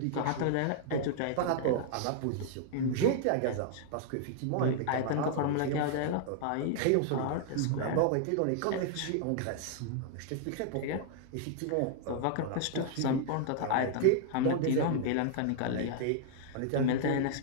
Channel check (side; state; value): both; different; correlation -0.01